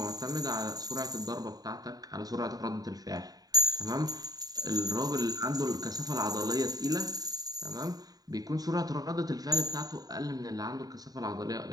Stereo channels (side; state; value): left; late; 0.18 ms